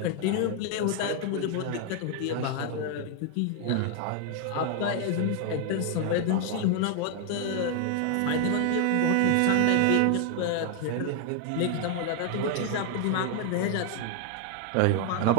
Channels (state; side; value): different; both; correlation 0.00